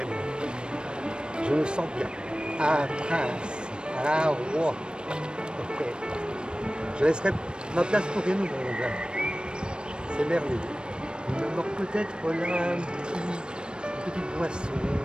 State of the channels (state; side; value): late; left; 0.053 ms